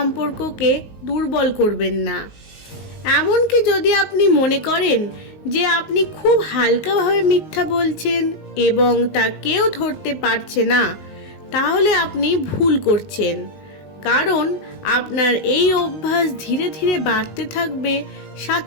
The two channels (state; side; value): late; right; 19 ms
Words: দুর্বল করবেন না। এমনকি যদি আপনি মনে করেন যে আপনি খুব হালকাভাবে মিথ্যা বলছেন এবং তা কেউ ধরতে পারছে না, তাহলে আপনি ভুল করছেন। কারণ আপনার এই অভ্যাস ধীরে ধীরে বাড়তে থাকবে,